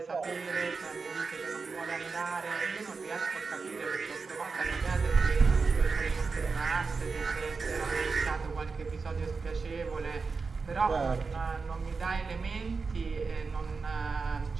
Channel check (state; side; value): quieter; left; 4.6 dB